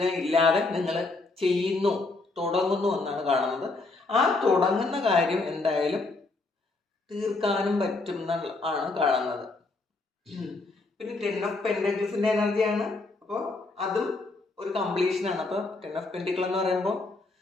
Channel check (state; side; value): quieter; right; 3.4 dB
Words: ഇല്ലാതെ നിങ്ങൾ ചെയ്യുന്നു, തുടങ്ങുന്നു എന്നാണ് കാണുന്നത്. ആ തുടങ്ങുന്ന കാര്യം എന്തായാലും തീർക്കാനും പറ്റും എന്നാണ് കാണുന്നത്. പിന്നെ 10 ഓഫ് പെൻറ്റക്കിൾസിൻ്റെ എനർജിയാണ്. അപ്പോൾ അതും ഒരു കംപ്ലീഷനാണ്. അപ്പോൾ 10 ഓഫ് പെൻറ്റിക്കിൾ എന്ന് പറയുമ്പോൾ